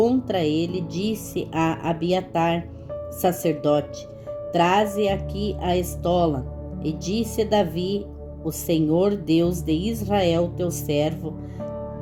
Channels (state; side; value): identical; both; correlation 1.00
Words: ele, disse a Abiatar, sacerdote: traze aqui a estola. E disse Davi: o Senhor Deus de Israel, teu servo,